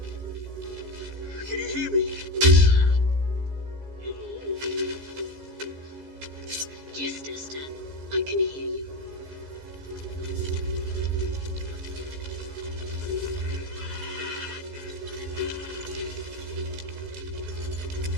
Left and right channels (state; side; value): late; left; 15 ms